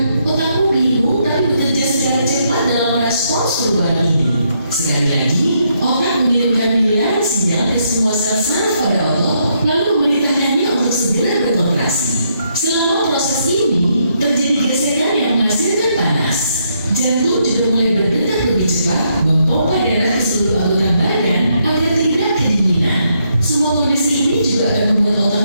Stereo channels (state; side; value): inverted; both; correlation -0.76